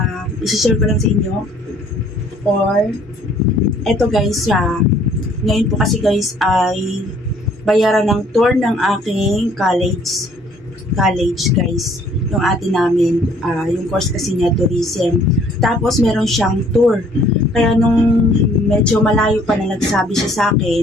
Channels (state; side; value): normal; both; correlation 0.59